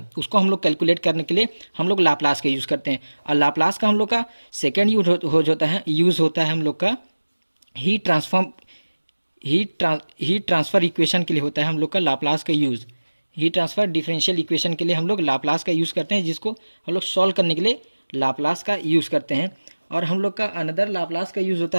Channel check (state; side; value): inverted; both; correlation -1.00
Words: उसको हम लोग कैलकुलेट करने के लिए हम लोग लाप्लास का यूज़ करते हैं। और लाप्लास का हम लोग का सेकेंड यूज़ होता है हम लोग का हीट ट्रांसफ़र इक्वेशन के लिए होता है हम लोग का लाप्लास का use. Heat transfer differential equation के लिए हम लोग लाप्लास का यूज़ करते हैं, जिसको हम लोग सॉल्व करने के लिए लाप्लास का यूज़ करते हैं। और हम लोग का अनदर लाप्लास का यूज़